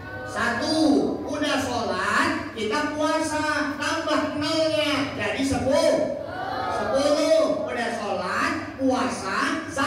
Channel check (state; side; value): identical; both; correlation 1.00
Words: 1. Udah sholat kita puasa, tambah 0-nya jadi 10. Udah sholat, puasa,